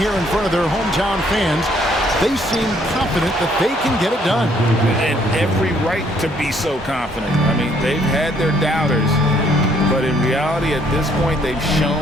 in front of their hometown fans, they seem confident that they can get it done. And every right to be so confident. I mean, they've had their doubters, but in reality, at this point, they've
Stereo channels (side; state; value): both; normal; correlation 0.66